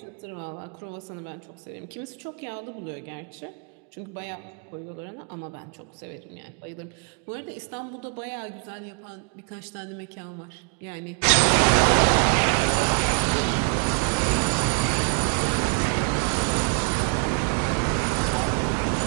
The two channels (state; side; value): quieter; left; 38.9 dB